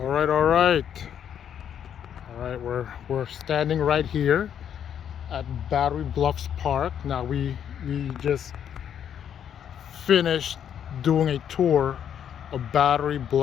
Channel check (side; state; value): right; quieter; 9.0 dB